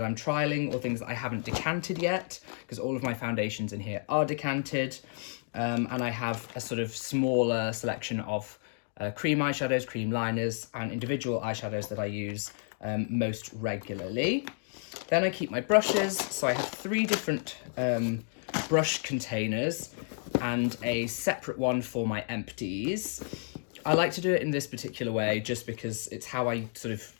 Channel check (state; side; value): silent; right; 57 dB below the other